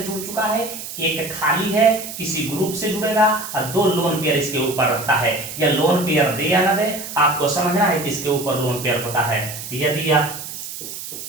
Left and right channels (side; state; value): right; noise; hiss, 9 dB below the sound